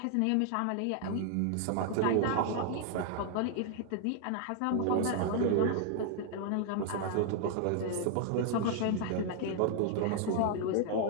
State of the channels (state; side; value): different; both; correlation 0.00